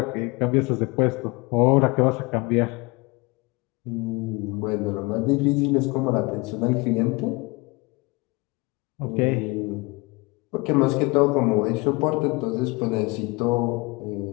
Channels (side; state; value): right; quieter; 25.8 dB